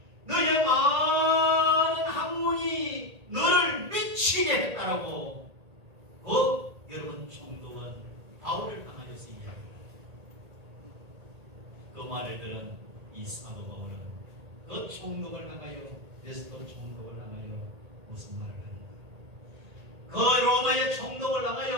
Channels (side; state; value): left; late; 1.8 ms